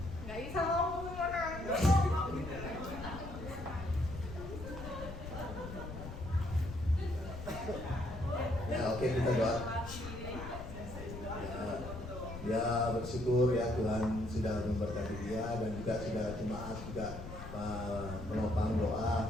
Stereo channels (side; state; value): left; noise; rumble, 10 dB below the sound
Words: Nggak bisa ngomong orang. Ya oke, kita doa. Ya bersyukur ya Tuhan sudah memberkati dia dan juga sudah jemaat juga menopang